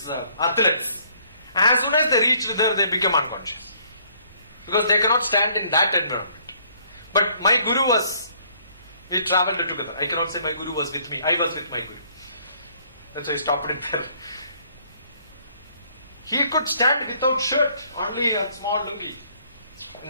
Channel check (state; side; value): inverted; both; correlation -0.63